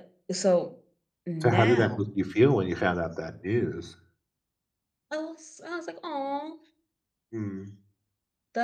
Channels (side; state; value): both; identical; correlation 1.00